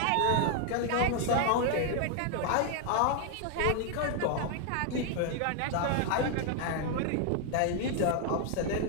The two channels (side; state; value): both; different; correlation 0.00